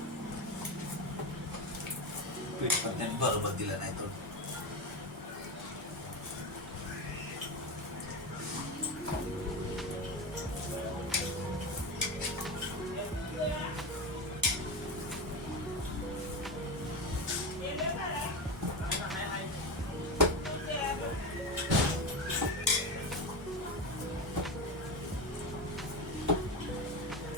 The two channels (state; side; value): normal; both; correlation 0.19